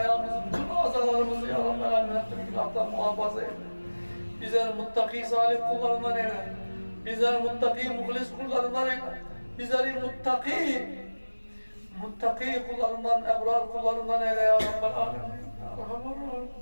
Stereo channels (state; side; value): inverted; both; correlation -1.00